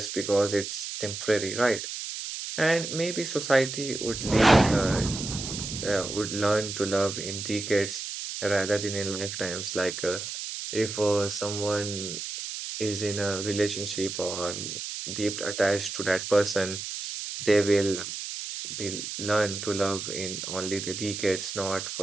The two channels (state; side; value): noise; right; hiss, 6 dB below the sound